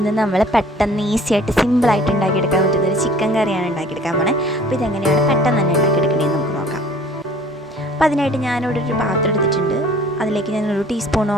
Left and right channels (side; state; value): both; normal; correlation 0.50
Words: നമ്മൾ പെട്ടെന്ന് ഈസി ആയിട്ട് സിമ്പിളായിട്ട് ഉണ്ടാക്കിയെടുക്കാൻ പറ്റുന്നൊരു ചിക്കൻ കറിയാണ് ഉണ്ടാക്കിയെടുക്കാൻ പോണേ. അപ്പോൾ ഇതെങ്ങനെയാണ് പെട്ടെന്ന് തന്നെ ഉണ്ടാക്കിയെടുക്കണേന്ന് നമുക്ക് നോക്കാം. അപ്പോൾ അതിനായിട്ട് ഞാനിവിടെ ഒരു പാത്രം എടുത്തിട്ടുണ്ട്. അതിലേക്ക് ഞാൻ 1